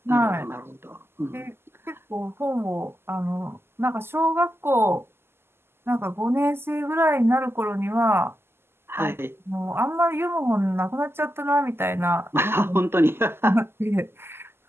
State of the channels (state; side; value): late; left; 0.12 ms